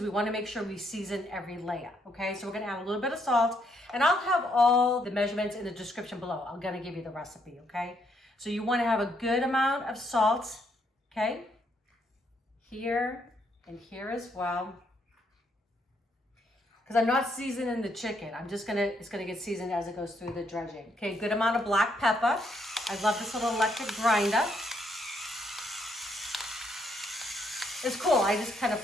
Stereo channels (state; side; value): normal; both; correlation 0.73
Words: we want to make sure we season every layer, okay? So we're going to add a little bit of salt, and I'll have all the measurements in the description below. I'm going to give you the recipe, okay? So you want to have a good amount of salt, okay? Here and here as well. Because I'm not seasoning the chicken. It's gonna get seasoned as it goes through the dredging. Okay, good amount of black pepper. I love this little electric grinder. It's cool. I just kind of